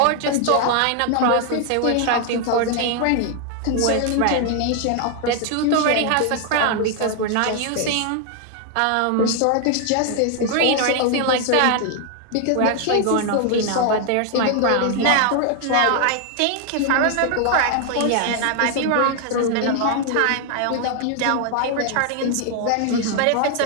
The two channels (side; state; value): both; different; correlation 0.00